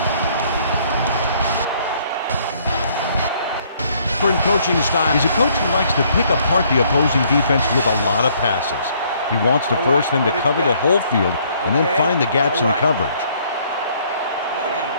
Different coaching style. He's a coach who likes to pick apart the opposing defense with a lot of passes. He wants to force them to cover the whole field and then find the gaps in the coverage.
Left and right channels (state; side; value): inverted; both; correlation -0.64